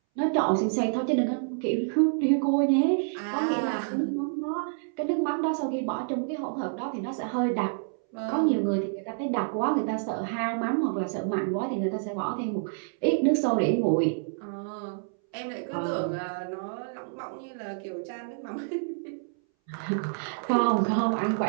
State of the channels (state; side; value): silent; left; 59 dB below the other